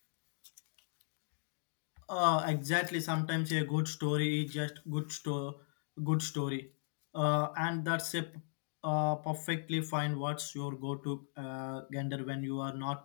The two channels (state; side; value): silent; right; digital silence